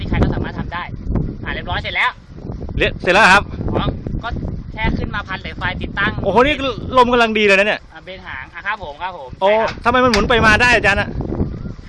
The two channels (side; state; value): both; identical; correlation 1.00